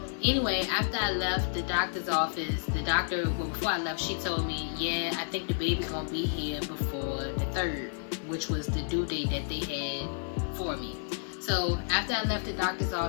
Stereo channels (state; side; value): silent; right; 57 dB below the other